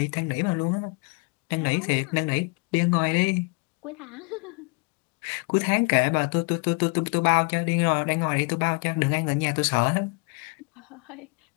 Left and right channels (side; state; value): right; quieter; 30.4 dB